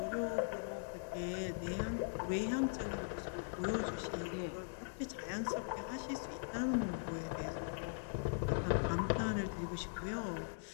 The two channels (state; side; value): silent; right; 51 dB below the other